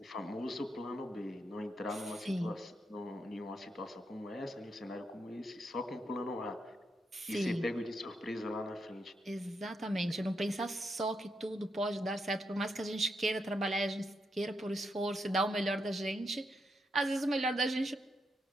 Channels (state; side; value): normal; both; correlation 0.82